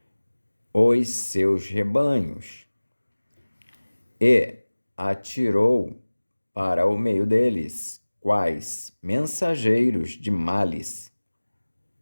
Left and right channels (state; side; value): inverted; both; correlation -1.00